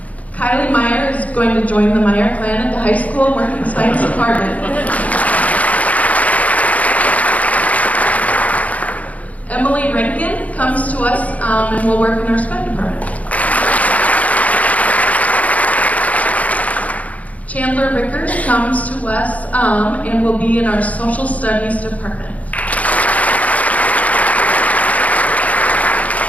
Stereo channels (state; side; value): late; right; 0.070 ms